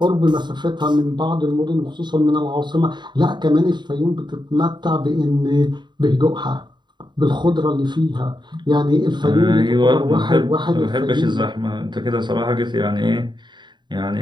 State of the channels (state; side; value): late; left; 0.22 ms